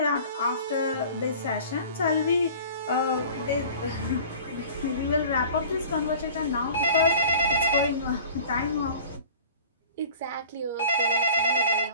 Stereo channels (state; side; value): inverted; both; correlation -0.45